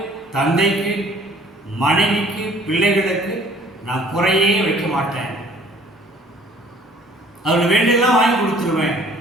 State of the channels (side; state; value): both; normal; correlation 0.54